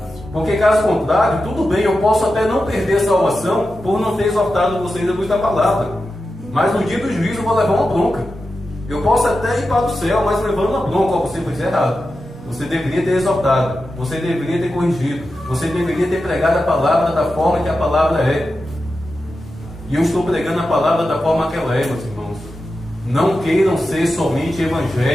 Porque caso contrário, tudo bem, eu posso até não perder a salvação por não ter exortado vocês a luz da palavra. Mas no dia do juízo eu vou levar uma bronca. Eu posso até ir para o céu, mas levando uma bronca, você fez errado. Você deveria ter exortado, você deveria ter corrigido, você deveria ter pregado a palavra da forma que a palavra é. E eu estou pregando a palavra da forma que ela é, meus irmãos. Não queiram ser somente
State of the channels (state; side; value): normal; both; correlation 0.91